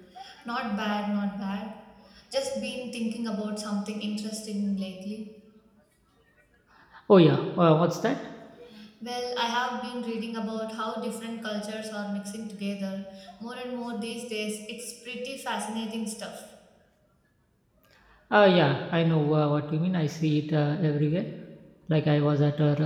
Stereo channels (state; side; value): identical; both; correlation 1.00